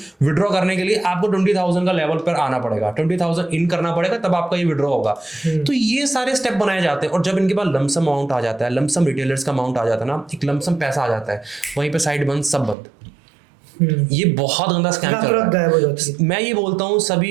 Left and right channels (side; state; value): left; drops out; at 12.8 s